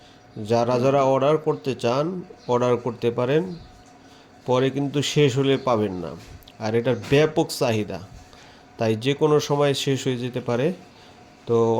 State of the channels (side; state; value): both; identical; correlation 1.00